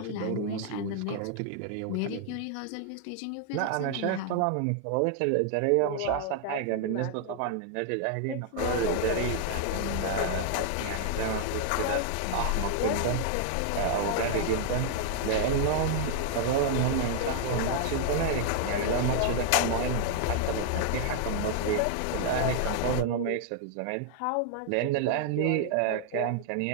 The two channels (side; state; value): both; different; correlation 0.00